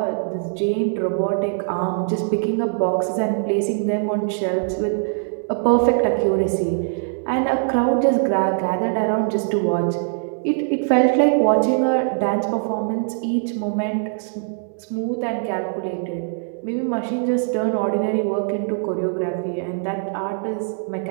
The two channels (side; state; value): left; silent; digital silence